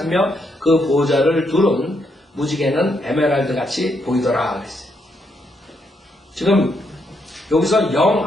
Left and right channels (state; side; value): normal; both; correlation 0.77